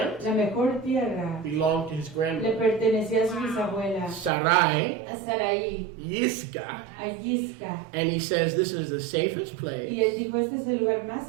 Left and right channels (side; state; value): left; drops out; at 4.3 s